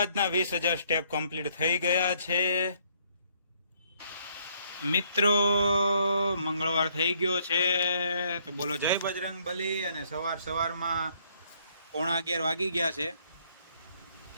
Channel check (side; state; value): both; inverted; correlation -0.67